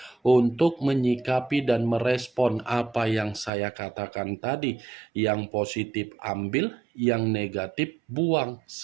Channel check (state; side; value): drops out; left; at 3.5 s